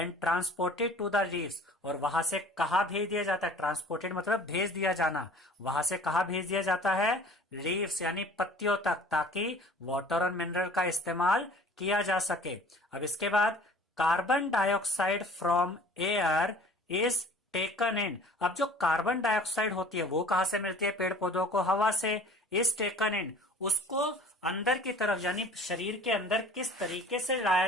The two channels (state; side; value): normal; both; correlation 0.48